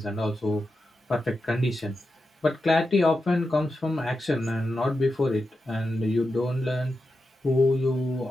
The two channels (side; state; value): both; normal; correlation 0.89